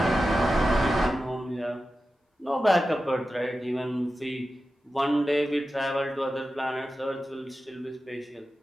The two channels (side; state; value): both; normal; correlation 0.93